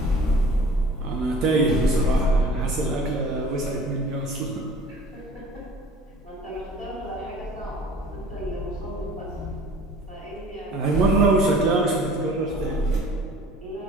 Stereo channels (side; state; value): both; normal; correlation 0.47